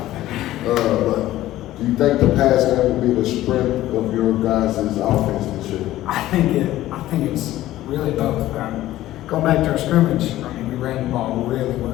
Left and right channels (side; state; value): right; quieter; 14.9 dB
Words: But do you think the pass game will be the strength of your guys' offense this year? I think it's really both. Going back to our scrimmage, we ran the ball really